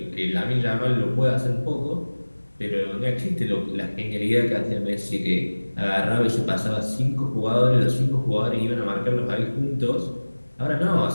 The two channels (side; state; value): both; inverted; correlation -1.00